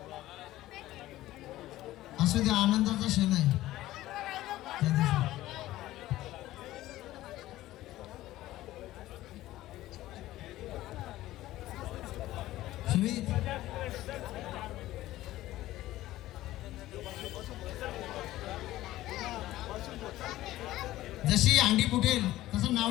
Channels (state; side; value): quieter; right; 15.7 dB